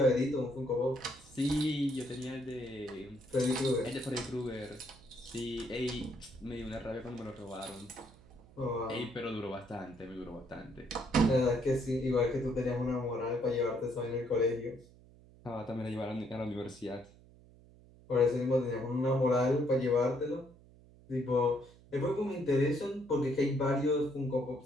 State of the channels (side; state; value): right; noise; hum, 24 dB below the sound